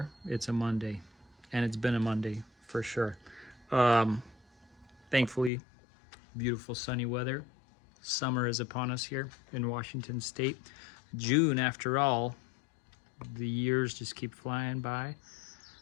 it's a Monday, and it's been a Monday for sure. Thankfully, beautiful sunny weather. Summer is upon us here in Washington State. June, after all, the years just keep flying by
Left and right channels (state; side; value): drops out; right; at 5.5 s